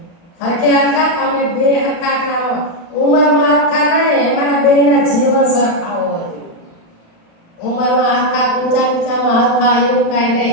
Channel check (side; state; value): right; late; 35 ms